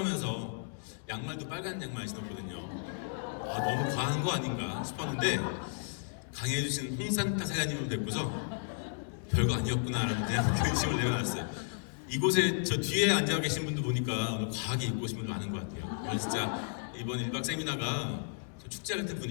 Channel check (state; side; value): silent; right; digital silence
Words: 양말도 빨간 양말 신었거든요. 아, 너무 과한 거 아닌가 싶었는데 강의해주신 홍산타 사장님을 뵙고서 별거 아니었구나라는 그냥 근심을 내려놨어요. 이곳에 저 뒤에 앉아 계신 분도 보니까 너무 과하게 입고 오신 분도 많은 것 같아요. 저는 진짜 이번 1박 세미나가 좀 축제 같은